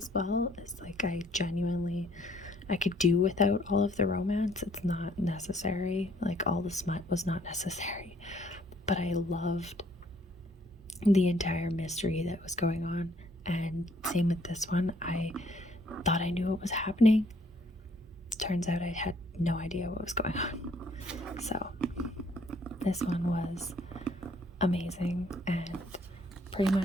well, is like I could do without all of the romance. It's not necessary. Like all the smut was not necessary. But I loved the entire mystery that was going on. And same with this one. I thought I knew what was happening. Turns out I had no idea what was going on. So this one was amazing, and pretty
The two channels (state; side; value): normal; both; correlation 0.63